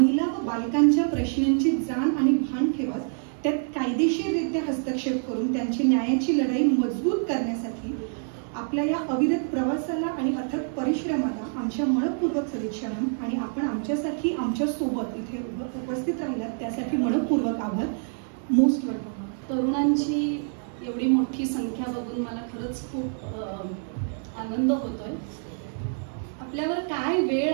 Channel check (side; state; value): left; silent; 61 dB below the other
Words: व बालकांच्या प्रश्नांची जाण आणि भान ठेवत त्यात कायदेशीररित्या हस्तक्षेप करून त्यांची न्यायाची लढाई मजबूत करण्यासाठी आपल्या या अविरत प्रवासाला आणि अथक परिश्रमाला आमच्या मनपूर्वक सदिच्छा आणि आपण आमच्यासाठी आमच्या सोबत इथे उपस्थित राहिलात त्यासाठी मनपूर्वक आभार. Most welcome. तरुणांची एवढी मोठी संख्या बघून मला खरंच खूप आनंद होतोय. आपल्यावर काय वेळ